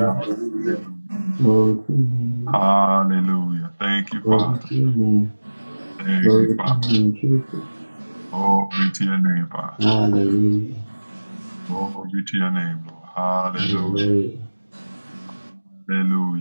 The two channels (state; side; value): inverted; both; correlation -1.00